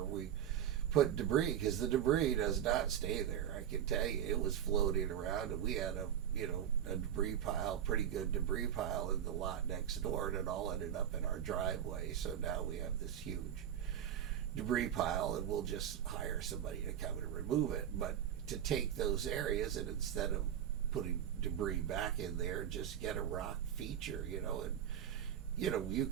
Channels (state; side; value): quieter; left; 9.8 dB